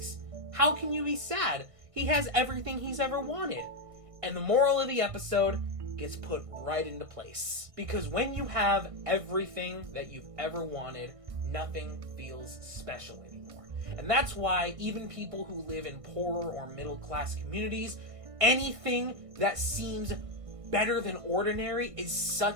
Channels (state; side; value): late; left; 1.6 ms